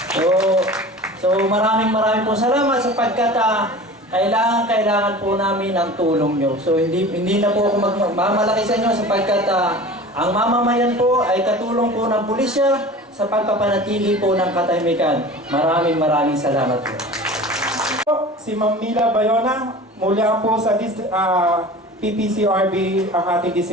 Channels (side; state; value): both; normal; correlation 0.38